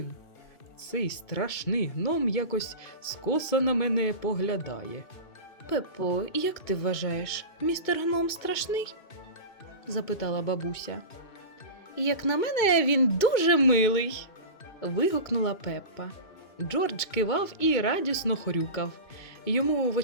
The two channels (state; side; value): late; right; 2.2 ms